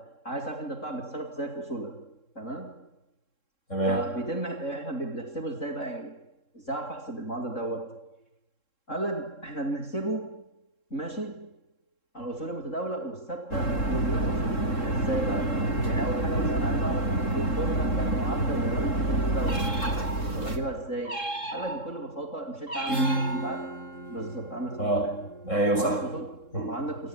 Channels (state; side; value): late; right; 3.7 ms